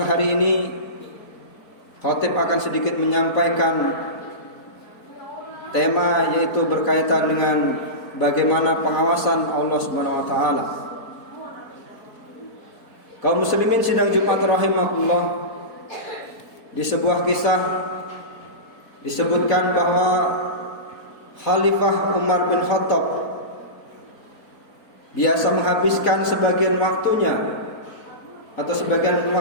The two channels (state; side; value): late; right; 4.3 ms